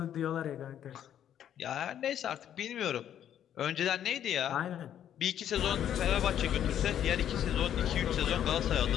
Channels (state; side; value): quieter; right; 10.2 dB